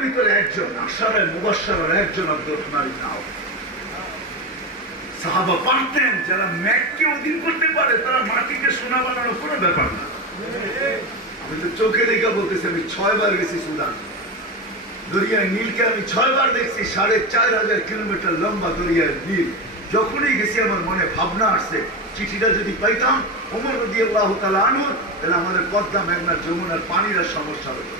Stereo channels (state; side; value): normal; both; correlation 0.18